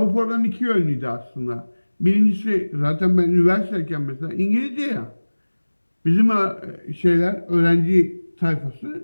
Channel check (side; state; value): both; inverted; correlation -1.00